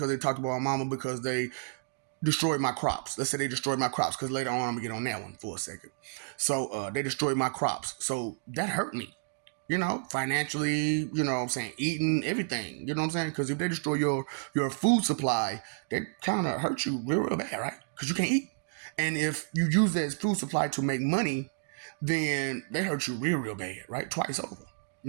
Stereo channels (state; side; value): silent; left; digital silence